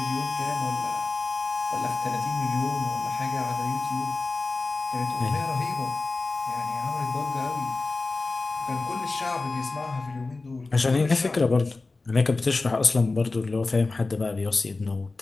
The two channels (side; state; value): right; quieter; 3.6 dB